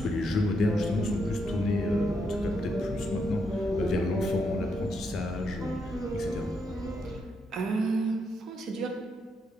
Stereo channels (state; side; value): normal; both; correlation 0.79